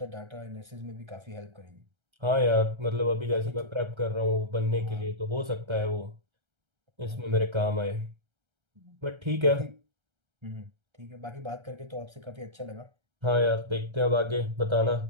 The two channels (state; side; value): late; left; 1.3 ms